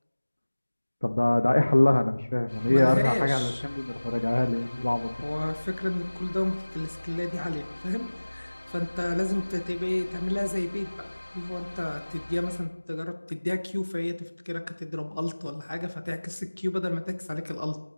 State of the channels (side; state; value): both; inverted; correlation -1.00